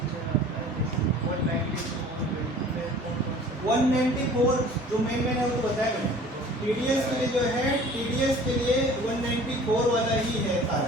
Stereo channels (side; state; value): both; normal; correlation 0.47